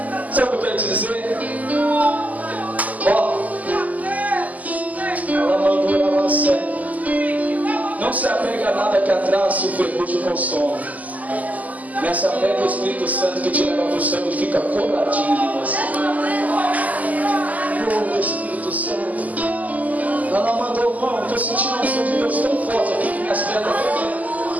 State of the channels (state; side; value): late; left; 0.077 ms